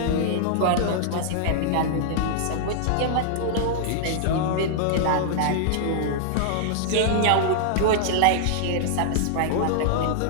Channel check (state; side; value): different; both; correlation -0.01